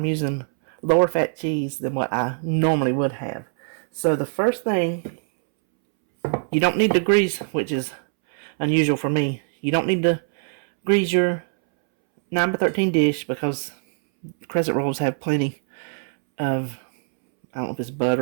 using lower fat cheese than what I normally would have. So the first thing, you don't need to grease, which is unusual for me. You don't need to grease your 9x13 dish because crescent rolls have plenty of, I don't know if it's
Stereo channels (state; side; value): silent; left; 64 dB below the other